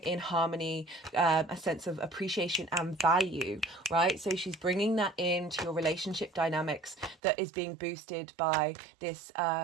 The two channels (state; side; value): drops out; left; at 7.2 s